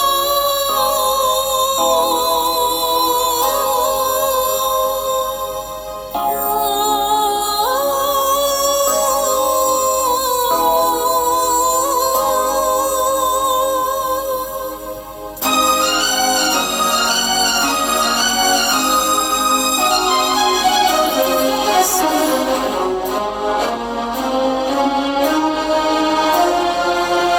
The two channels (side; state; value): both; identical; correlation 1.00